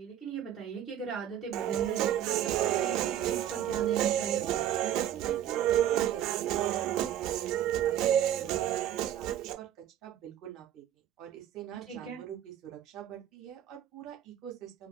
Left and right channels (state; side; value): quieter; left; 11.0 dB